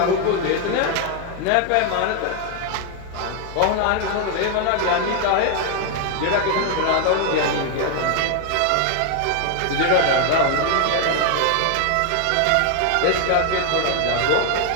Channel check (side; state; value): both; different; correlation 0.00